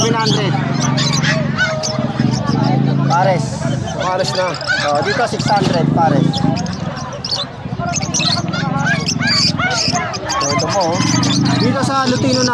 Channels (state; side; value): identical; both; correlation 1.00